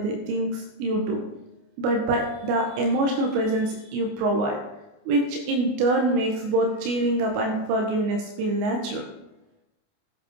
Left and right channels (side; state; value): left; late; 29 ms